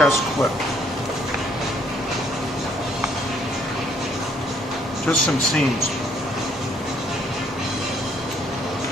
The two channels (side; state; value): both; normal; correlation 0.66